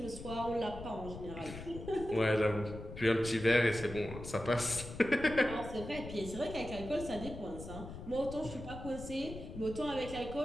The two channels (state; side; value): noise; left; rumble, 11 dB below the sound